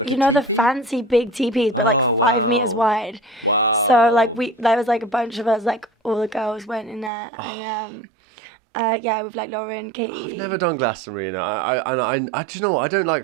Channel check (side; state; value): left; drops out; at 7.1 s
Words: you know, the fancy big teepees, but like 5 meters wide. Wow. So like there was like a bunch of us, like all the girls went in there, and yeah, with like Lauren, Katie. I've never done Glastonbury. I actually, you know what? I don't